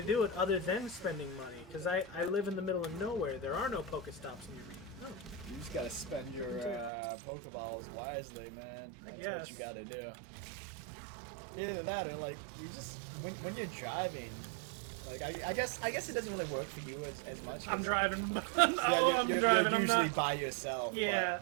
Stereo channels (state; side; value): drops out; left; at 6.9 s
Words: do it other than spending money. Because I live in the middle of nowhere. There are no Pokestops near me. No. You just gotta spend your Pokeballs wisely, man. That's guess. what you gotta do. Either that or, like, you just... When you're driving... Like, I guess it doesn't really work for you as much. I'm driving. Yeah, I'm you're driving. I'm usually not... by yourself. Yeah,